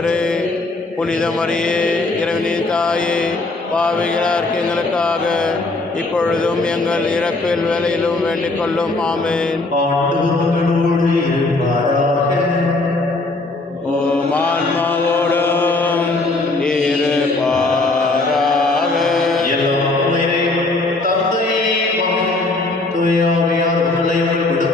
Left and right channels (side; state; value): right; quieter; 3.1 dB